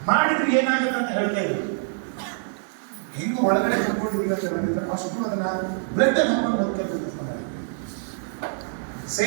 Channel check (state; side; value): silent; left; digital silence